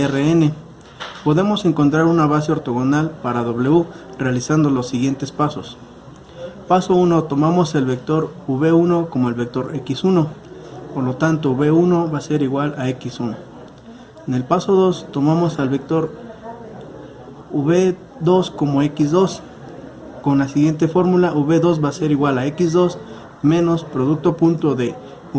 Rn. Podemos encontrar una base ortogonal para W realizando los siguientes pasos. Paso 1. Tomamos el vector v1 como el vector x1. Por lo tanto, v1 va a ser igual a x1. En el paso 2, tomamos al vector v2 como x2. Con la siguiente fórmula, v2 va a ser igual a x2 menos producto punto de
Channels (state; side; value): identical; both; correlation 1.00